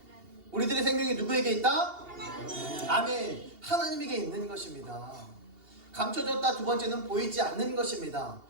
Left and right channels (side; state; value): left; late; 2.8 ms